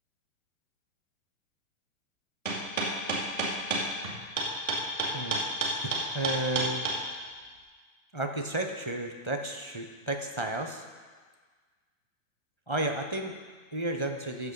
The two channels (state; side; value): late; right; 1.3 ms